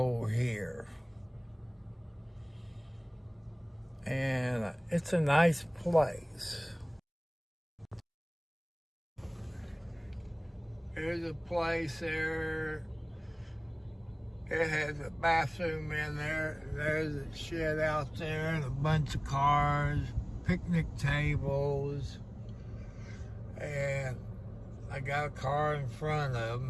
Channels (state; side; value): identical; both; correlation 1.00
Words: here. And it's a nice place. There's a place there. It has a bathroom in there. There's a shed out there and a bunch of cars, picnic tables. And I got a car in front of